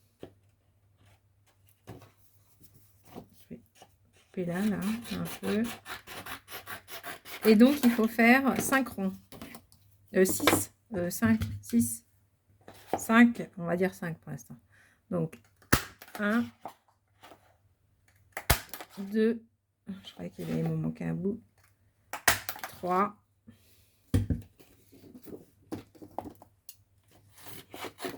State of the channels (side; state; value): both; identical; correlation 1.00